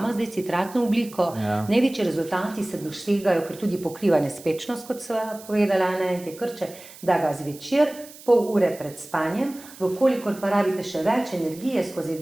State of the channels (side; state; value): right; noise; hiss, 19 dB below the sound